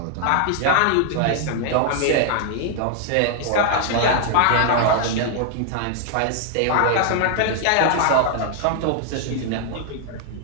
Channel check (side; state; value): both; different; correlation 0.00